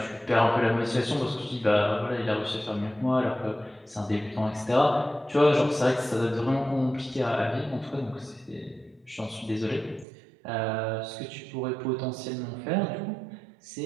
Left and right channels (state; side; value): drops out; left; at 10.1 s